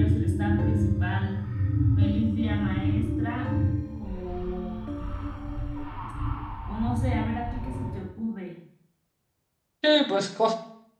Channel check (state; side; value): identical; both; correlation 1.00